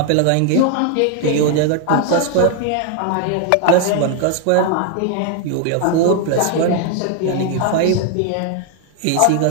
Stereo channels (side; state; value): both; different; correlation 0.00